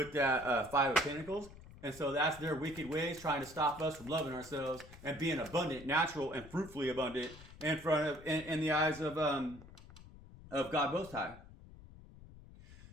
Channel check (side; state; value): left; noise; rumble, 18 dB below the sound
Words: that 5 of Pentacles. And so that's their wicked ways trying to stop us from loving ourselves and being abundant, natural, and fruitfully abundant in the eyes of God Most High.